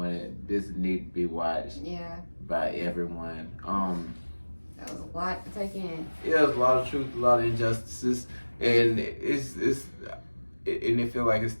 This need to be watched by everyone. That was a lot to take in. Yeah, there's a lot of truth, a lot of injustices, and it feel like it's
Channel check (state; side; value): inverted; both; correlation -1.00